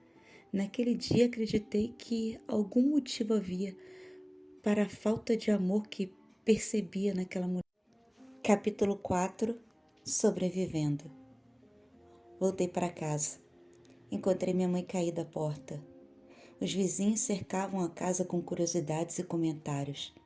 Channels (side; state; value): both; identical; correlation 1.00